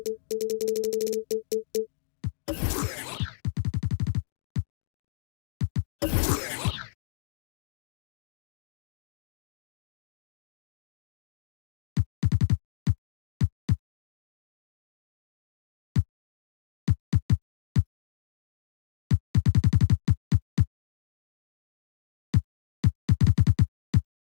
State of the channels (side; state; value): right; silent; 56 dB below the other